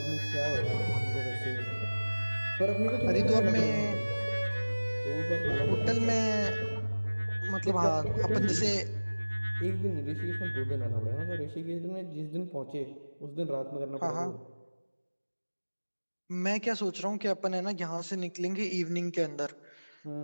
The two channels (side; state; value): both; inverted; correlation -1.00